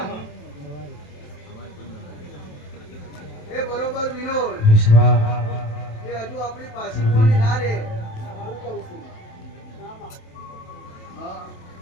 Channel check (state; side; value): late; right; 27 ms